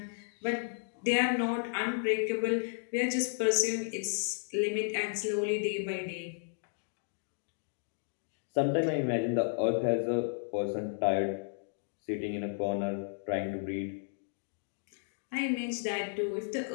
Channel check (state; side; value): silent; right; digital silence